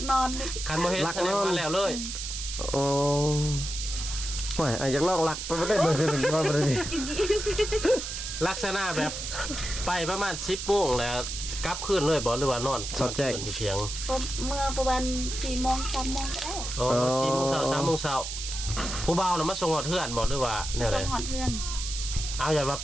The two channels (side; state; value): right; noise; hiss, 6 dB below the sound